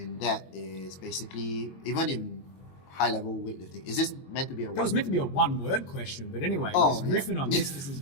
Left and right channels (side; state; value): right; late; 22 ms